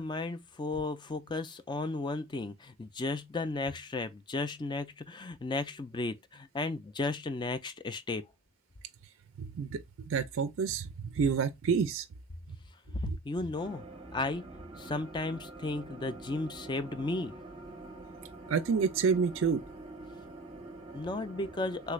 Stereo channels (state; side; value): normal; both; correlation 0.40